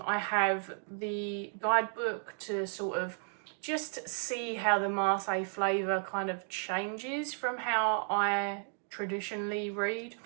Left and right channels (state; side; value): silent; left; 55 dB below the other